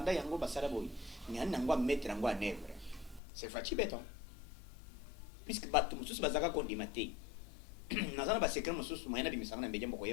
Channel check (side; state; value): right; drops out; at 3.2 s